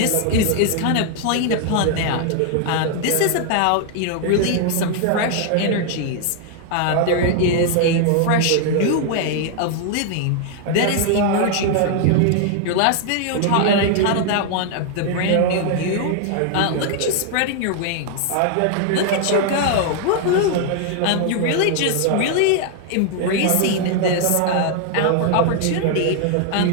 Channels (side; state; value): both; different; correlation 0.00